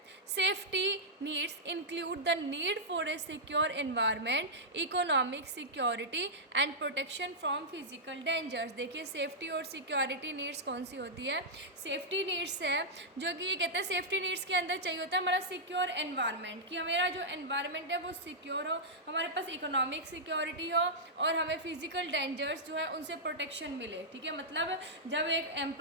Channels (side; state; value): both; normal; correlation -0.09